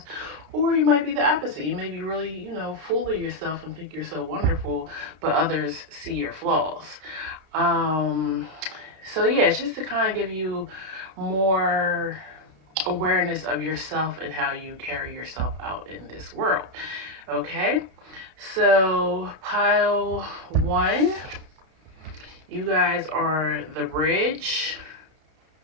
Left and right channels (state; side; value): late; left; 32 ms